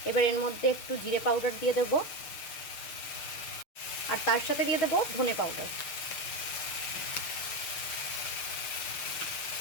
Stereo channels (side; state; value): right; late; 6.5 ms